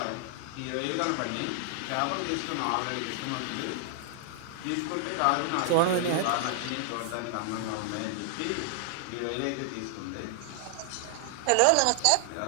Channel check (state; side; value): different; both; correlation 0.00